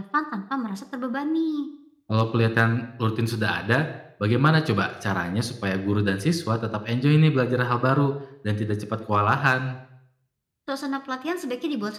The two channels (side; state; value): both; identical; correlation 1.00